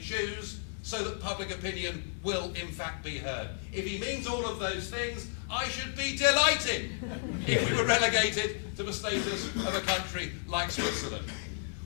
so that public opinion will in fact be heard? If he means all of those things, I should be delighted if we were relegated to the status of a country like Switzerland.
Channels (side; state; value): right; silent; digital silence